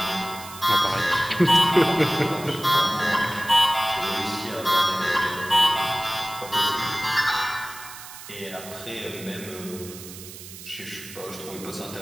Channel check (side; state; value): right; noise; hiss, 14 dB below the sound